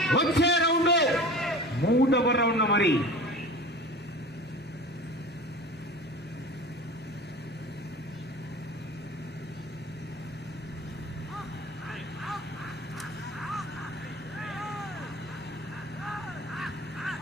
వచ్చే రౌండ్ 3వ రౌండ్ మరి.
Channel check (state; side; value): normal; both; correlation 0.37